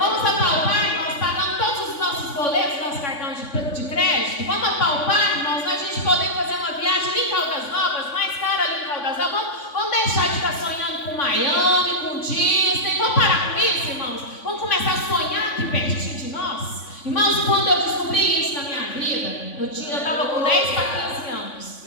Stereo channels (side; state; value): right; late; 3.5 ms